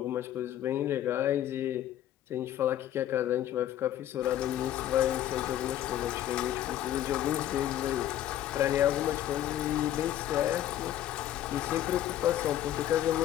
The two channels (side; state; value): right; quieter; 12.2 dB